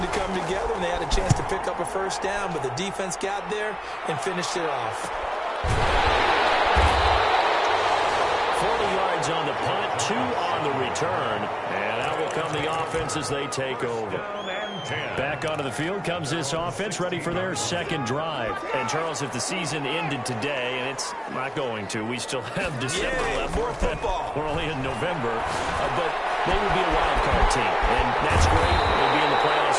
come together, and they had a chance to pick up a 1st down, but the defense got there and finished it off. 40 yards on the punt, 2 on the return, and out will come the offense as they take over. Back onto the field comes this offense, ready for their 2nd drive. And, Charles, if the season ended today, and it's not going to, we still have December left. More football. We're only in November, but they would be a wild card team. And that's great. They'll be in the playoffs,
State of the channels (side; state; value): both; identical; correlation 1.00